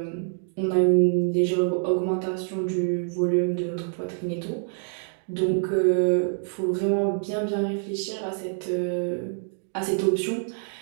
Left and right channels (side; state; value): left; silent; digital silence